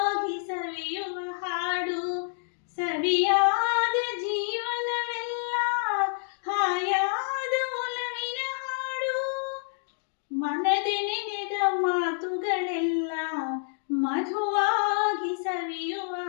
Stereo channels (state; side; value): silent; right; digital silence